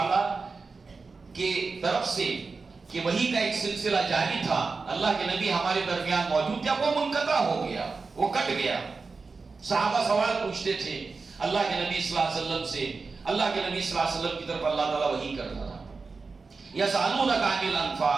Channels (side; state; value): left; quieter; 4.3 dB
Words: کے طرف سے کہ وحی کا ایک سلسلہ جاری تھا، اللہ کے نبی ہمارے درمیان موجود تھے، وہ منقطع ہو گیا، وہ کٹ گیا. صحابہ سوال پوچھتے تھے اللہ کے نبی صلی اللہ علیہ وسلم سے. اللہ کے نبی صلی اللہ علیہ وسلم کی طرف اللہ تعالیٰ وحی کرتا تھا. یسألونک عن